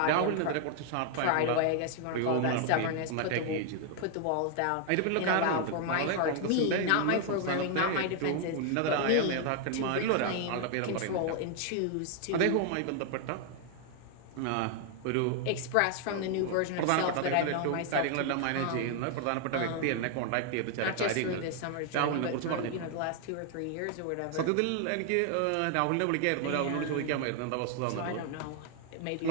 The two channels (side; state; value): both; different; correlation 0.00